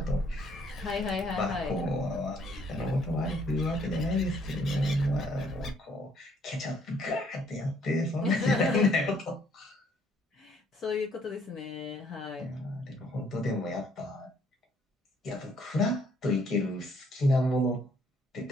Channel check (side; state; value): both; normal; correlation 0.65